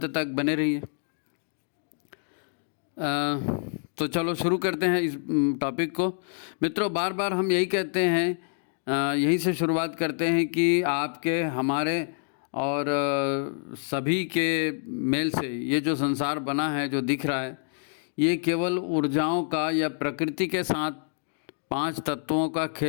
तक बने रहिए। तो चलो शुरू करते हैं इस टॉपिक को। मित्रों, बार बार हम यही कहते हैं, यहीं से शुरुआत करते हैं कि आपके, हमारे और सभी के मेल से ये जो संसार बना है, जो दिख रहा है, ये केवल ऊर्जाओं का या प्रकृति के साथ 5 तत्वों का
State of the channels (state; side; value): silent; right; digital silence